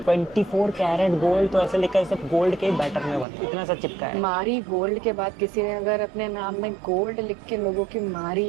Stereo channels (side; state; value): left; drops out; at 3.2 s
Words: 24 कैरेट गोल्ड तो ऐसे लिखा है सब गोल्ड के बैटर में बना। इतना सा चिपका है। मारी गोल्ड के बाद किसी ने अगर अपने नाम में गोल्ड लिख के लोगों की